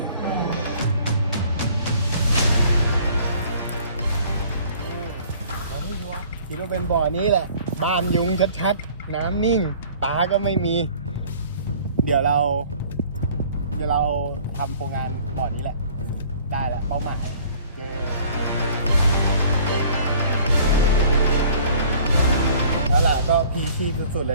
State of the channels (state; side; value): inverted; both; correlation -0.52